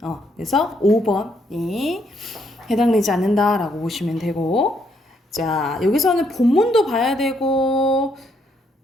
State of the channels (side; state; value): both; normal; correlation 0.73